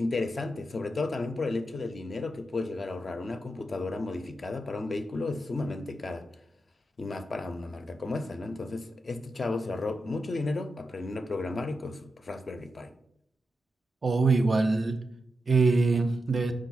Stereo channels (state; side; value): normal; both; correlation 0.87